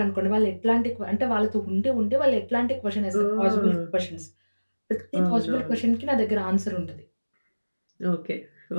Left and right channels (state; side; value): inverted; both; correlation -1.00